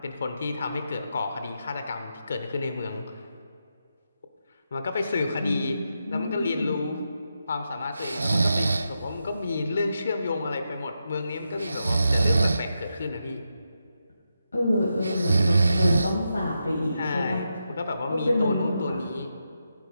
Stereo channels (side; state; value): both; inverted; correlation -0.86